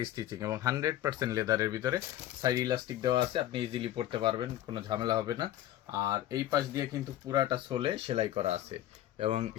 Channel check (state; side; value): quieter; right; 13.1 dB